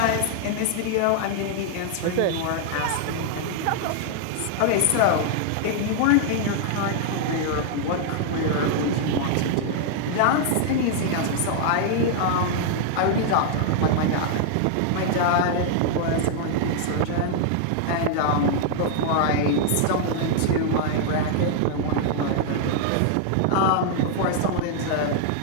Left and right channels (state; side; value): different; both; correlation -0.01